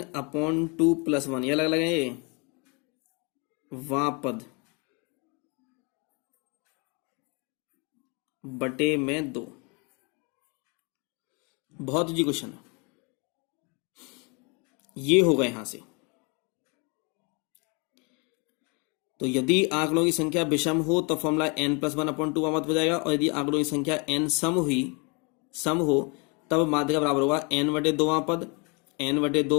+ 1, ये अलग अलग है, ये वां पद बटे में 2। बहुत इजी क्वेश्चन है, ये होगा यहां से। तो यदि आंकड़ों की संख्या विषम हो तो फॉर्मूला n+1/2 वां पद हो जाएगा, और यदि आंकड़ों की संख्या n सम हो तब माध्यिका बराबर होगा n/2 वां पद,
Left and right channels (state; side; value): quieter; right; 31.9 dB